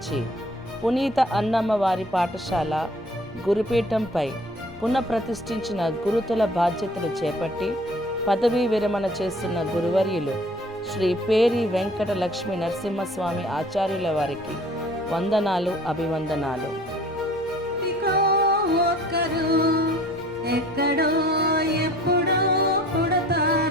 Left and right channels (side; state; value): both; normal; correlation 0.51